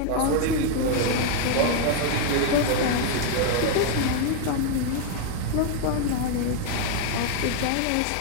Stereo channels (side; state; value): both; different; correlation 0.00